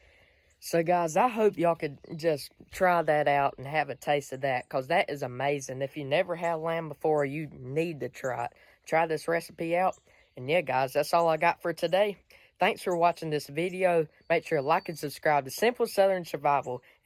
So guys, I hope y'all could just try that out and have a taste of that, because that is amazing. If you never had lamb before, you need to try it. Try this recipe out. And yeah, guys, that's all I got for today. Thanks for watching this video. Make sure to like and subscribe to Simple Southern Survival.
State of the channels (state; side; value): identical; both; correlation 1.00